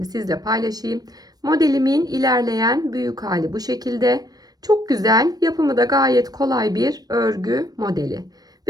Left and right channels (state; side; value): late; left; 0.19 ms